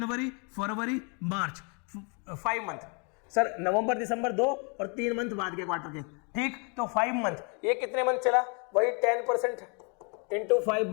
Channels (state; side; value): quieter; right; 35.1 dB